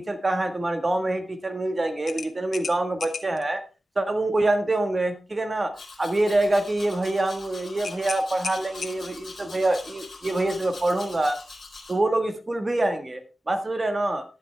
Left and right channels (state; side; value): normal; both; correlation 0.95